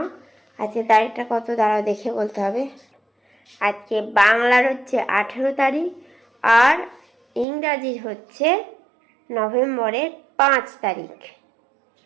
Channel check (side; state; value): left; drops out; at 7.5 s